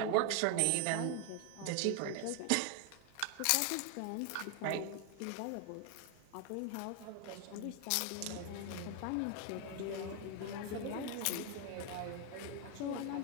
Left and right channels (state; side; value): different; both; correlation 0.01